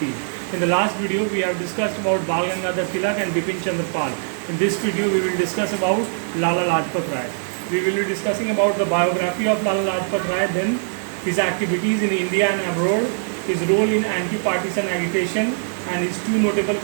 In the last video, we have discussed about Bal Gangadhar Tilak and Bipin Chandra Pal. In this video, we will discuss about Lala Lajpat Rai. We will be discussing about the biography of Lala Lajpat Rai, then his activities in India and abroad, his role in anti-partisan agitation, and his two notable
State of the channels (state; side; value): silent; left; digital silence